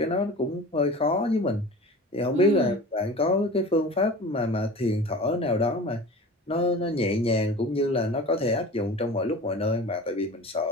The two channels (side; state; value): both; normal; correlation 0.37